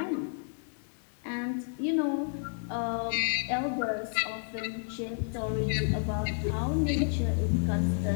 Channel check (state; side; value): silent; right; 57 dB below the other